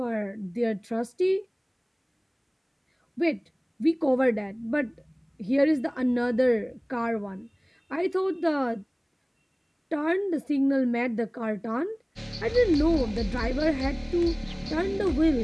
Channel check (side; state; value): both; identical; correlation 1.00